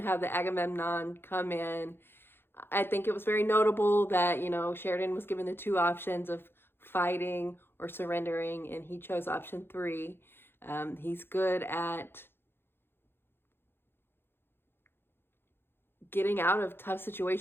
the Agamemnon come in. I think it was very notable that, you know, Sheridan was given the two options of fighting or surrendering, and he chose option 3. He's good at getting out of tough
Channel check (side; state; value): right; late; 0.11 ms